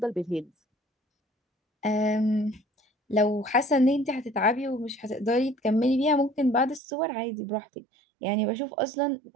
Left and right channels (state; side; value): drops out; left; at 6.8 s